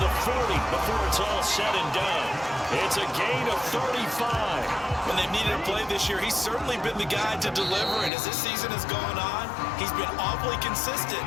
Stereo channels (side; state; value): right; drops out; at 8.1 s